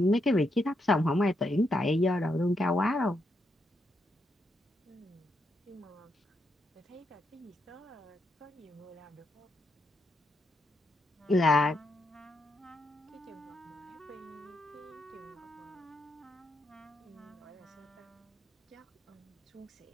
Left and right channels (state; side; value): normal; both; correlation 0.81